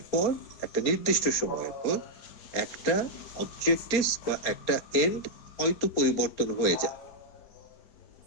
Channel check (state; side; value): late; right; 4.4 ms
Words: পর, একটা নির্দিষ্ট সময়ের পর একটা অবজেক্টিভ বা একটা এন্ড হয়তো পরিবর্তন হয়ে যায়।